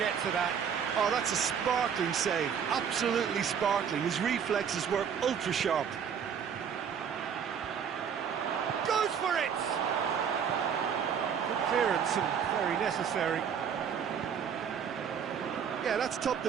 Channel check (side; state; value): left; quieter; 7.5 dB